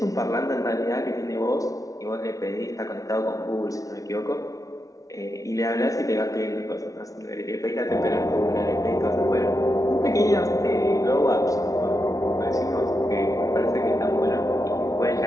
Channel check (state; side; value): late; right; 0.17 ms